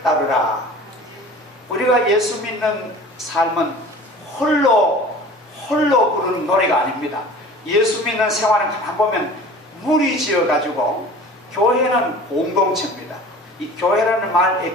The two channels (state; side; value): normal; both; correlation 0.42